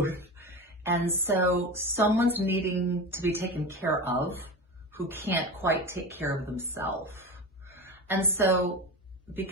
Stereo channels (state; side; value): normal; both; correlation 0.26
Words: And so someone's needing to be taken care of who can't quite take care of themselves. And so